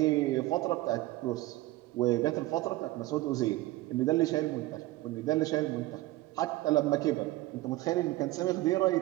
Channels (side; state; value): left; quieter; 17.9 dB